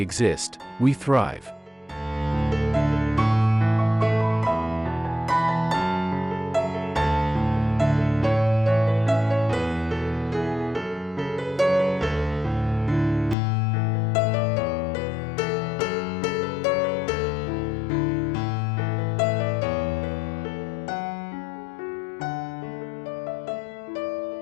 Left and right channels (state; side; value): drops out; right; at 13.4 s